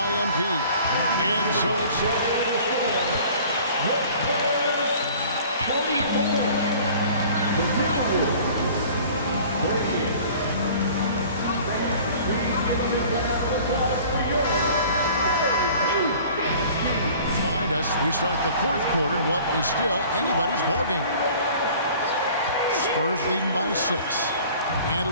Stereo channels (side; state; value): both; inverted; correlation -0.48